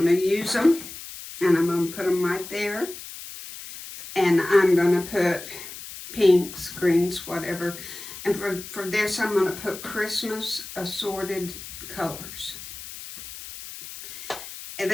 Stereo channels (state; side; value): noise; left; hiss, 13 dB below the sound